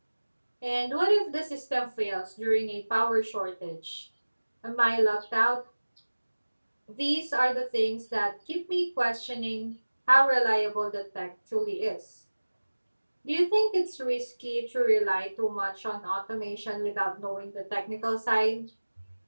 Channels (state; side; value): inverted; both; correlation -1.00